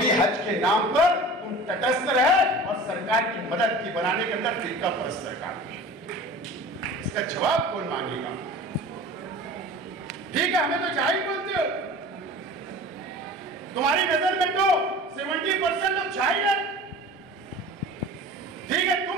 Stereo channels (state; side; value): normal; both; correlation 0.39